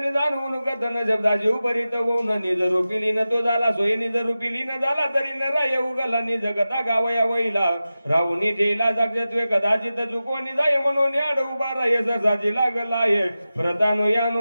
जाणून कथन शब्दाची उपरित होऊन निज रूपिली न तो झाला सोयी निज रूपिली न झाला तरी न राय उगला निज कथा गावया वैला राहून ठेला जागत्वे कदाचित चुकवणी जाय म्हणून आड उभा राय सरसाची लागला आहे प्रतानो यानु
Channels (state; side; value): inverted; both; correlation -0.94